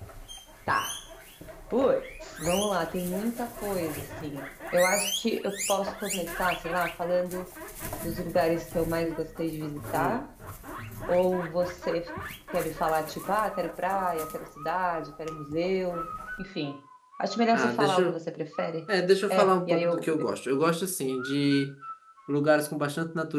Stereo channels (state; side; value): identical; both; correlation 1.00